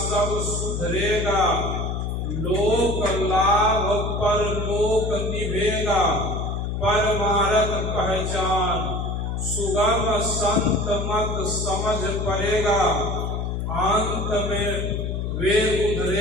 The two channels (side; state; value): left; noise; hum, 2 dB below the sound